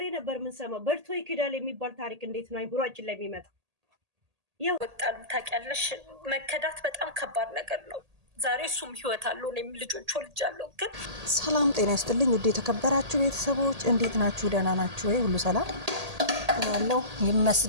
ነበር የምንሰማው። በልቶ ይክዳል የሚባል ታሪክ እንዴት ነው አይምሯችን ላይ የሚመጣ? ወጣሉ ታውቂያለሽ፣ መከዳት በጣም ከባድ ነገር ነው። ዛሬ እሱም ህይወት አለው፣ እኔም ልጆች ወልጃለሁ። ግን ሰላም ጤና ይስጥልኝ ውድ የተከበራችሁ ቤተሰቦች እንዴት ናችሁ? ደህና ናችሁ ወይ? ሁሉ ሰላም ያለው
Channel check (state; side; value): late; left; 1.8 ms